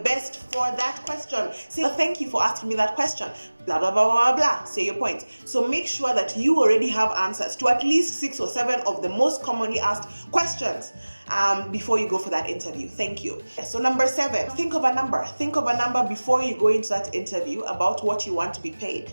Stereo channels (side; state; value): both; inverted; correlation -1.00